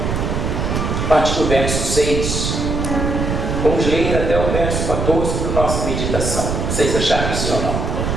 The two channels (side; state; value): right; noise; rumble, 1 dB below the sound